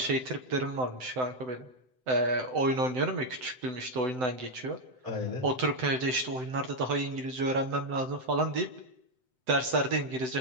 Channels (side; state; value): left; late; 7.8 ms